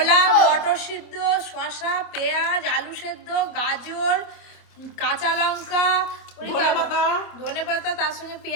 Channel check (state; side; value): late; right; 26 ms